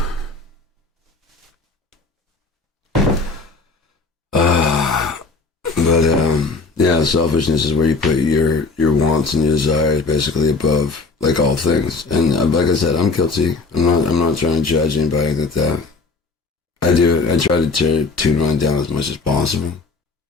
Yeah, selfishness is where you put your wants and your desires basically above like all things. And like I said, I'm guilty. I'm not trying to judge anybody that. I do it. I try to tune mine down as much as possible.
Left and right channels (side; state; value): right; quieter; 4.1 dB